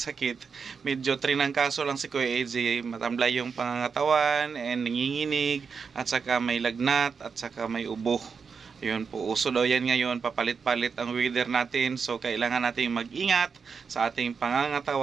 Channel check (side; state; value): left; quieter; 5.7 dB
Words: medyo trinangkaso lang si Kuya AJ. Matamlay yung pangangatawan and nanginginig, at saka may lagnat, at saka may ubo. Yun po, uso daw yan ngayon, papalit-palit ang weather natin. So kailangan nating mag-ingat sa ating